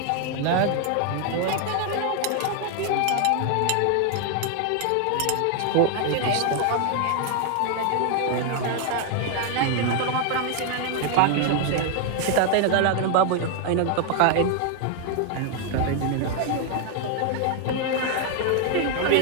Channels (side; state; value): both; different; correlation 0.00